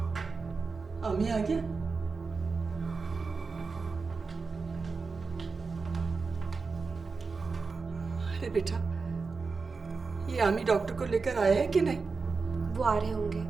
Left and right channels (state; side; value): quieter; left; 4.5 dB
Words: आमी आ गया? अरे बेटा, ये आमी डॉक्टर को लेकर आया है कि नहीं? वो आ रहे होंगे।